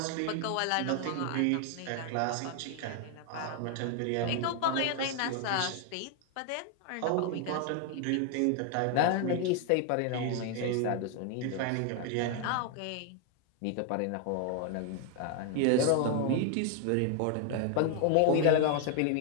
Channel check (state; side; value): different; both; correlation 0.00